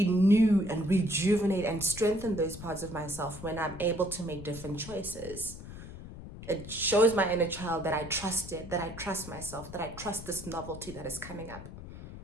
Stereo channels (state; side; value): noise; left; rumble, 13 dB below the sound